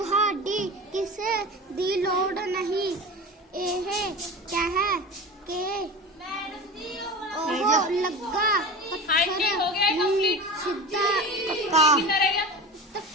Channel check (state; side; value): normal; both; correlation 0.32